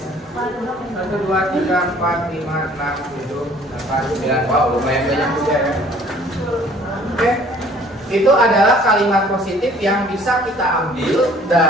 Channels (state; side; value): normal; both; correlation 0.55